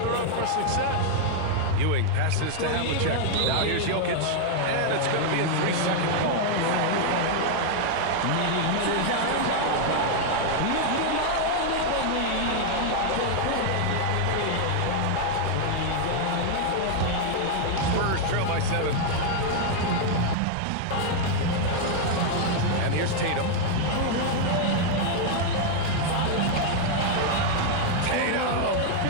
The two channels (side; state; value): both; different; correlation 0.00